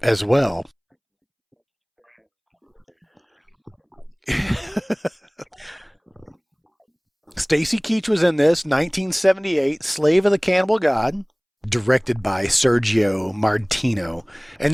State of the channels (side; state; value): both; identical; correlation 1.00